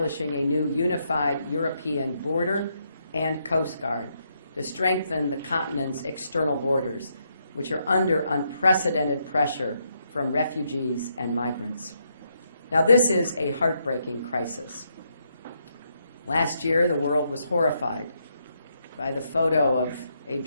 a new unified European border and Coast Guard to strengthen the continent's external borders, which are under unprecedented pressure from refugees and migrants. Now, this is a heartbreaking crisis. Last year, the world was horrified by the photo of a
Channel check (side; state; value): both; inverted; correlation -0.78